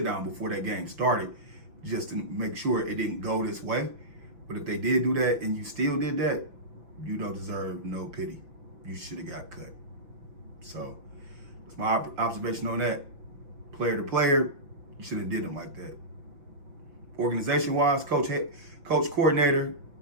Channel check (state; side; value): late; left; 6.0 ms